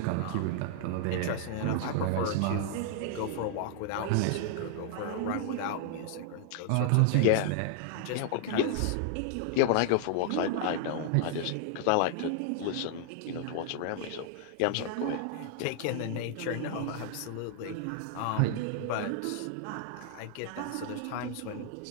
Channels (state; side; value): different; both; correlation 0.00